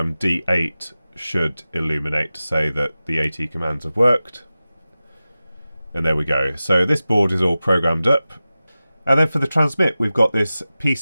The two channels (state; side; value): inverted; both; correlation -0.95